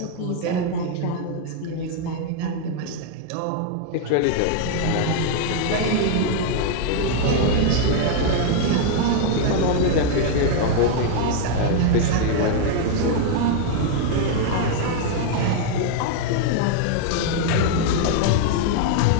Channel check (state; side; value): different; both; correlation 0.00